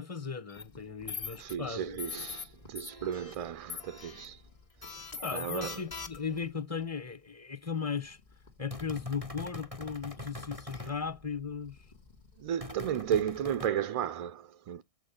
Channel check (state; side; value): late; left; 1.6 ms